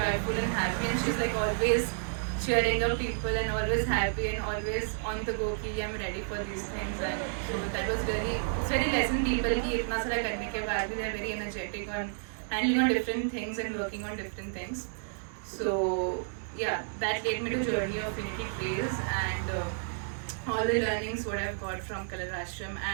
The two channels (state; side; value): silent; left; digital silence